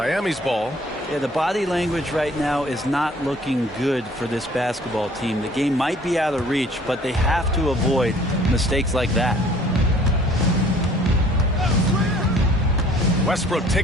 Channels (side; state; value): both; normal; correlation 0.54